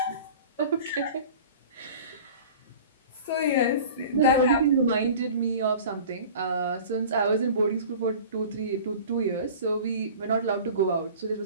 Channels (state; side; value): inverted; both; correlation -0.41